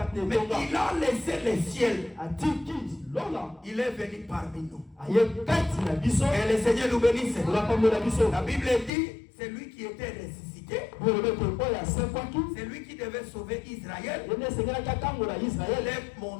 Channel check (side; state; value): right; drops out; at 8.9 s